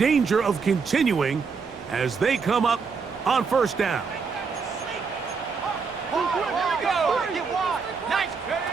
of continuing as they come up on 1st down.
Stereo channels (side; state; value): left; quieter; 5.3 dB